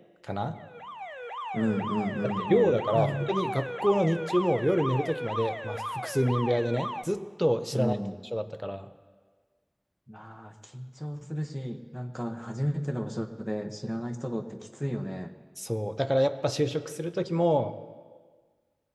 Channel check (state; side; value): identical; both; correlation 1.00